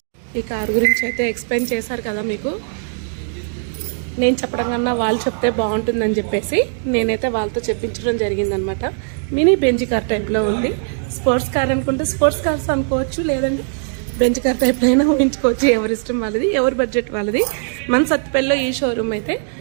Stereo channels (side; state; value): left; silent; digital silence